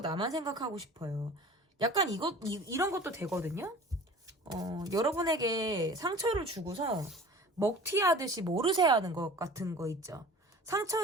나만 생각하고 싶어요. 약간 이런 것도 되거든요. 여러분에게 상처를 주고서 먹튀하듯이 모르쇠 하는 것 같은 거 있죠.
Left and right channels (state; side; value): normal; both; correlation 0.42